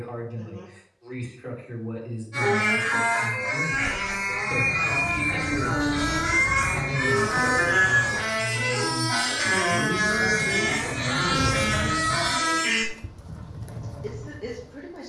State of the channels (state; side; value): identical; both; correlation 1.00